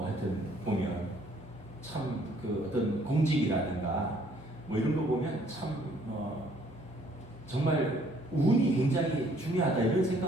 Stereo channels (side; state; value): both; normal; correlation 0.62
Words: 보면 참 그 어떤 공직이라든가 뭐 이런 거 보면 참 정말 운이 굉장히 중요하다 이런